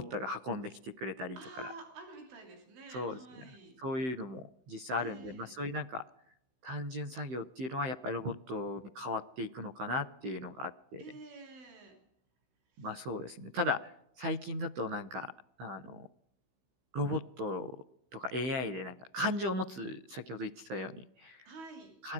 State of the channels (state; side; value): late; left; 16 ms